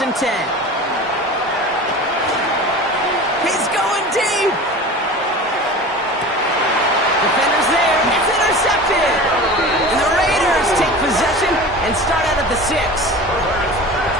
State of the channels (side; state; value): both; normal; correlation 0.35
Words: and 10. He's going deep. Defenders there. It's intercepted. And the Raiders take possession and start out at the 6.